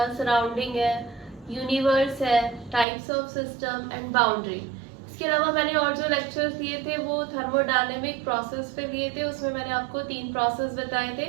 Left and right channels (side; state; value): left; drops out; at 2.9 s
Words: सराउंडिंग है, यूनिवर्स है, types of system and boundary. इसके अलावा मैंने और जो लेक्चर्स लिए थे वो थर्मोडायनेमिक प्रोसेस पे लिए थे। उसमें मैंने आपको 3 प्रोसेस बताए